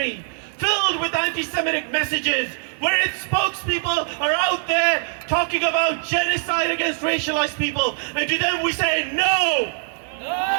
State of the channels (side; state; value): left; silent; 64 dB below the other